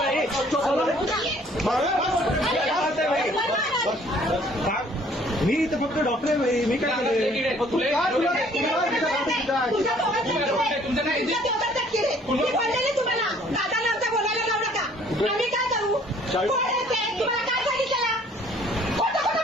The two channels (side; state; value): both; normal; correlation 0.58